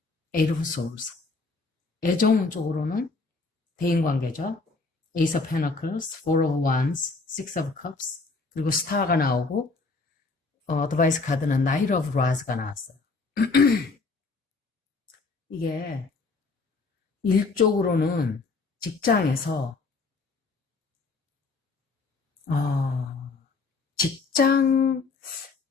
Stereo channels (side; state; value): right; quieter; 4.0 dB